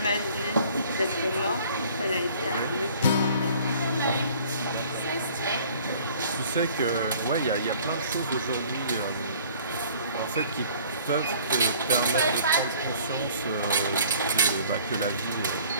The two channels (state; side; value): inverted; both; correlation -0.53